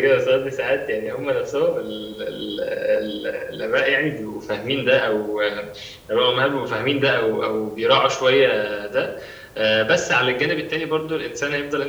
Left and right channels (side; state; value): both; identical; correlation 1.00